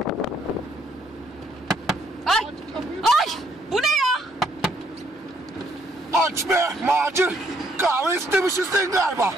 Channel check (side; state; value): both; normal; correlation 0.69